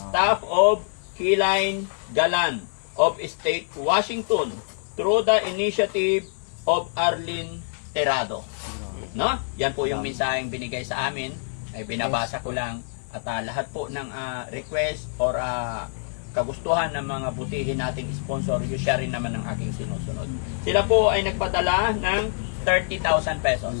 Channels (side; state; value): right; silent; 62 dB below the other